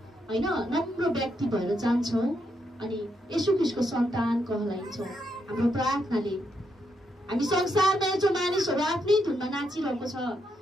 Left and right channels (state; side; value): normal; both; correlation 0.80